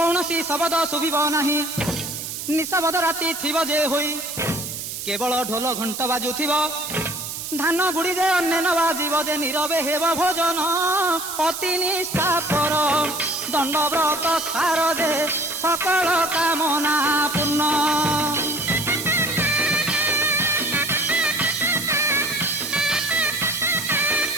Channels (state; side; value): noise; right; hiss, 7 dB below the sound